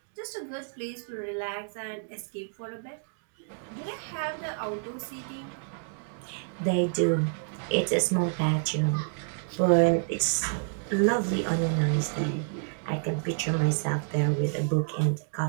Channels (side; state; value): left; silent; digital silence